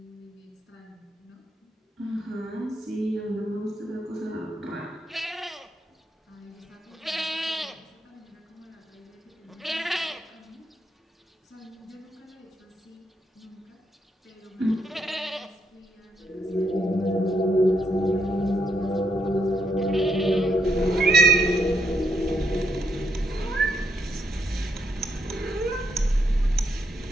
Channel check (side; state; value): both; normal; correlation 0.77